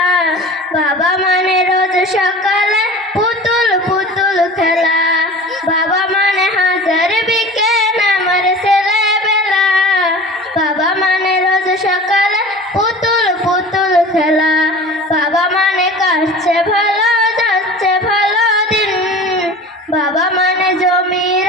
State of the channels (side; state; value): both; normal; correlation 0.38